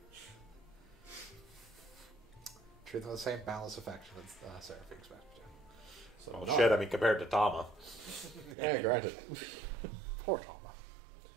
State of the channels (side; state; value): left; drops out; at 8.6 s